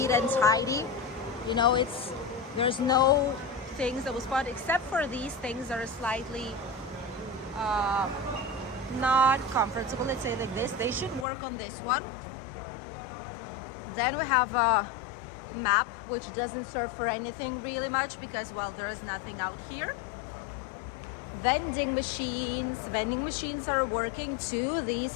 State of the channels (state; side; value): drops out; right; at 11.2 s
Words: and tidy. You know, there's no things that will spot except for these things that are slightly not comfortable. Let's say like this. They should work on this one. Then we have a map, which doesn't serve for anything really much because, well, there is nothing out here. Vending machines are working too. These